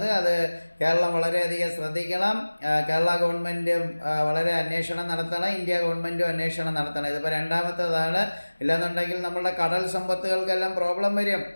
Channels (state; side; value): inverted; both; correlation -1.00